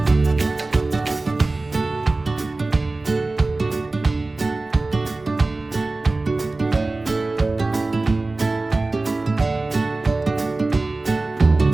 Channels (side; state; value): left; quieter; 3.2 dB